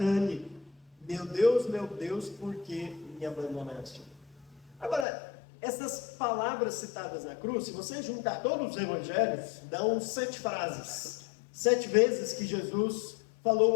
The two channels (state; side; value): drops out; right; at 5.1 s